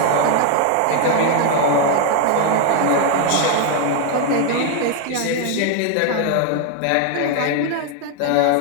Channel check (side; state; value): both; different; correlation 0.00